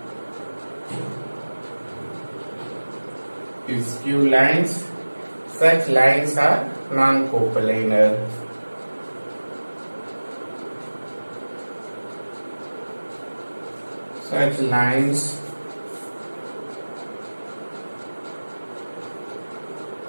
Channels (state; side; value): inverted; both; correlation -1.00